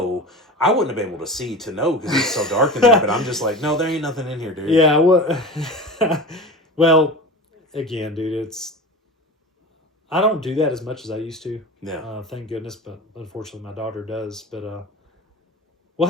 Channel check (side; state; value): both; normal; correlation 0.31